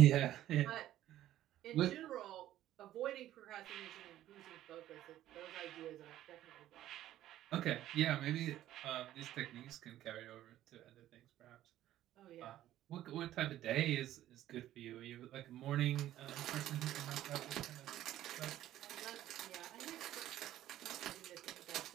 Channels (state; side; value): quieter; left; 13.3 dB